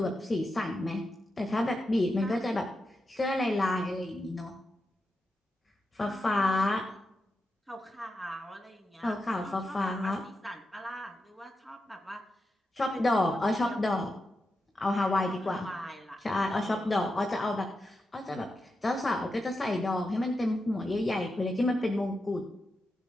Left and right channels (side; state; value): both; normal; correlation 0.88